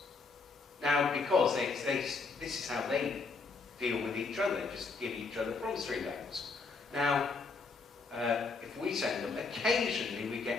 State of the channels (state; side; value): quieter; right; 4.3 dB